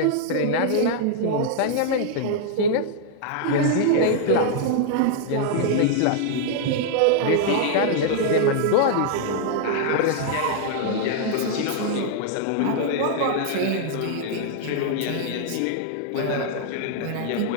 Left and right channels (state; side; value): different; both; correlation -0.01